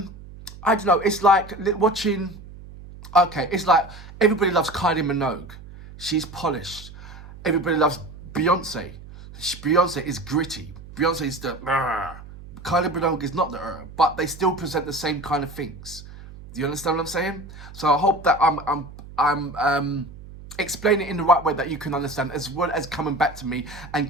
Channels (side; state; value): right; noise; hum, 16 dB below the sound